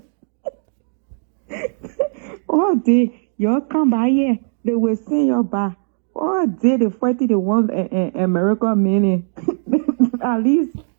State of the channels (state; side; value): silent; left; digital silence